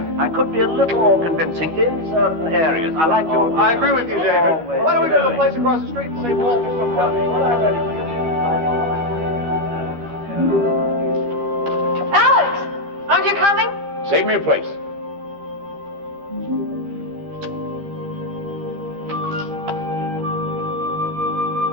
I could be a little more convincing in certain areas. I like your... I agree with you, David. Why don't we go to the place across the street and save Walter some money? Alex, aren't you coming? Save me a place.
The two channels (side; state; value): left; late; 13 ms